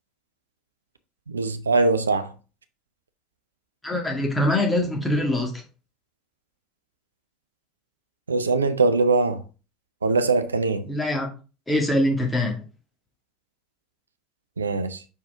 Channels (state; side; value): normal; both; correlation -0.18